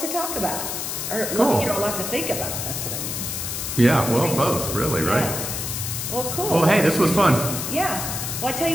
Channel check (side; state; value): left; noise; hiss, 4 dB below the sound